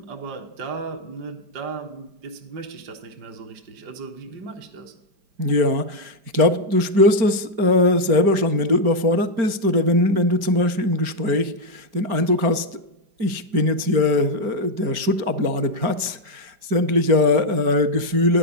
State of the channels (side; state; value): left; late; 5.0 ms